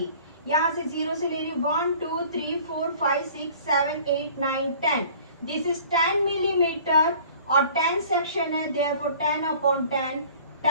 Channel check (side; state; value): both; inverted; correlation -0.49